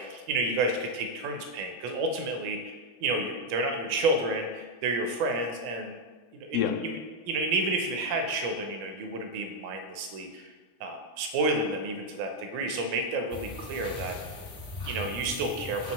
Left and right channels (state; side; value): late; left; 3.7 ms